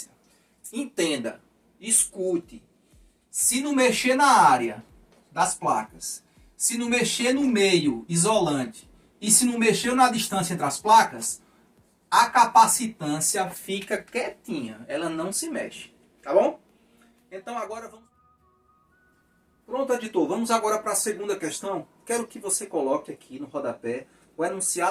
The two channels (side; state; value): both; identical; correlation 1.00